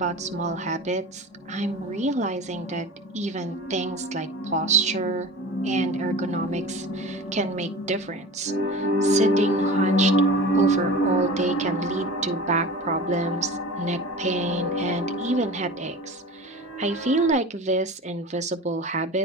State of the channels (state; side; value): normal; both; correlation 0.35